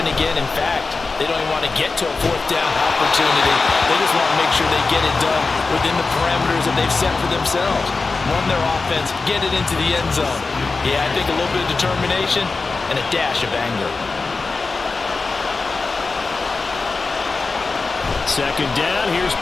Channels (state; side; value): quieter; right; 4.0 dB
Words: again. In fact, they don't even want to get to a 4th down opportunity. They just want to make sure they get it done within the parameters that they've set for themselves. Run their offense, get it into the end zone. Yeah, I think a little bit of determination and a dash of anger. 2nd down, here's